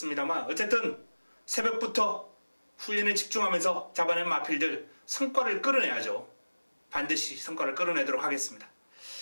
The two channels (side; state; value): both; inverted; correlation -1.00